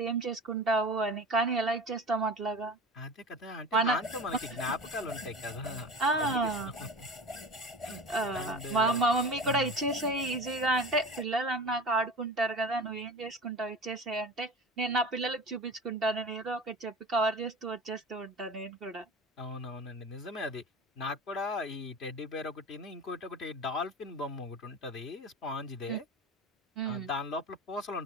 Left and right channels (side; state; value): both; normal; correlation 0.33